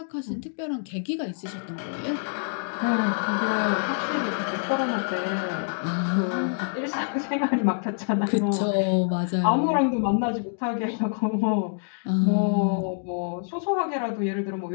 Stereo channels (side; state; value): right; silent; digital silence